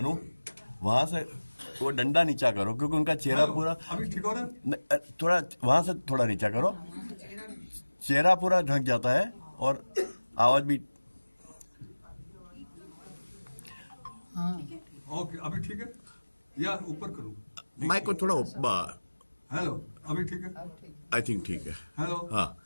वहां से वो डंडा नीचा करो क्योंकि उनका चेहरा पूरा अभी ठीक हो रहा है। थोड़ा वहां से थोड़ा नीचा करो, चेहरा पूरा ढक जाता है और आवाज भी। ओके, अभी ठीक है या ऊपर करूं? माइक को थोड़ा ऊपर। हेलो, अभी ठीक है? आई थिंक ठीक है। हेलो, हाँ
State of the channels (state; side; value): inverted; both; correlation -1.00